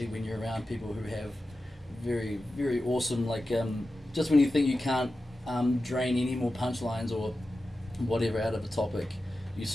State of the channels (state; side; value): normal; both; correlation 0.93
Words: when you're around people who have very, very awesome, like, just when you think you can't drain any more punchlines or whatever out of a topic, you